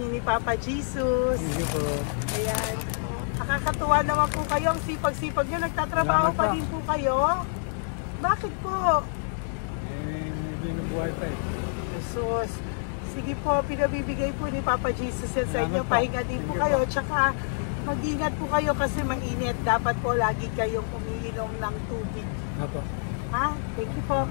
ni Papa Jesus. Hindi po. Ayan. Nakakatuwa naman po kayo. Ang sipag-sipag nyo. Nagtatrabaho pa din po kayo. Bakit po? Binubuhay pa eh. Jesus. Sige po, pinabibigay po ni Papa Jesus yan sa inyo. Pahinga din po kayo. Tsaka mag-ingat po kayo kasi mainit. Dapat po lagi kayong umiinom ng tubig. Apo. Ha? Thank you po.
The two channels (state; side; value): silent; right; 60 dB below the other